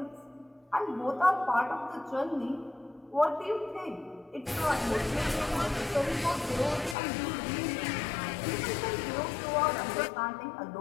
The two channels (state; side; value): drops out; right; at 7.0 s